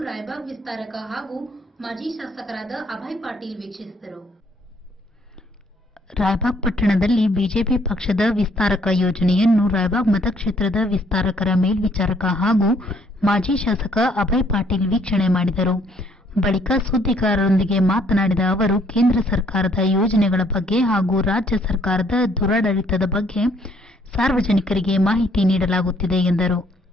ರಾಯಬಾಗ್ ವಿಸ್ತಾರಕ ಹಾಗೂ ಮಾಜಿ ಶಾಸಕರಾದ ಅಭಯ್ ಪಾಟೀಲ್ ವೀಕ್ಷಿಸಿದರು. ರಾಯಬಾಗ್ ಪಟ್ಟಣದಲ್ಲಿ ಬಿಜೆಪಿ ಪಕ್ಷದ ವಿಸ್ತಾರಕ ಯೋಜನೆಯನ್ನು ರಾಯಬಾಗ್ ಮತಕ್ಷೇತ್ರದ ವಿಸ್ತಾರಕರ ಮೇಲ್ವಿಚಾರಕ ಹಾಗೂ ಮಾಜಿ ಶಾಸಕ ಅಭಯ್ ಪಾಟೀಲ್ ವೀಕ್ಷಣೆ ಮಾಡಿದರು. ಬಳಿಕ ಸುದ್ದಿಗಾರರೊಂದಿಗೆ ಮಾತನಾಡಿದ ಅವರು, ಕೇಂದ್ರ ಸರ್ಕಾರದ ಯೋಜನೆಗಳ ಬಗ್ಗೆ ಹಾಗೂ ರಾಜ್ಯ ಸರ್ಕಾರದ ದುರಾಡಳಿತದ ಬಗ್ಗೆ ಸಾರ್ವಜನಿಕರಿಗೆ ಮಾಹಿತಿ ನೀಡಲಾಗುತ್ತಿದೆ ಎಂದರು.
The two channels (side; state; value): both; normal; correlation 0.65